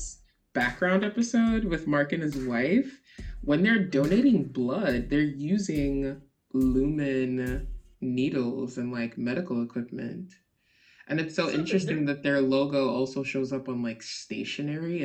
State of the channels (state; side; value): identical; both; correlation 1.00